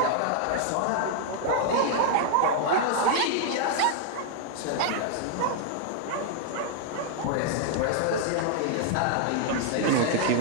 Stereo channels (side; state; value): both; different; correlation 0.00